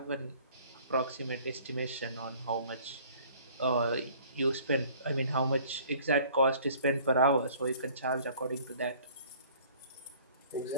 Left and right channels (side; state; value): both; inverted; correlation -0.53